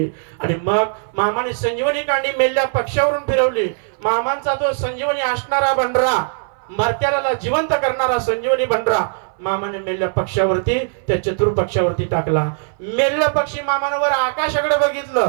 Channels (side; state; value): left; silent; 60 dB below the other